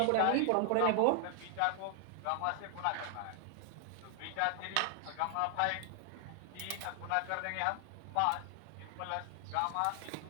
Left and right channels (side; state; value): both; different; correlation 0.00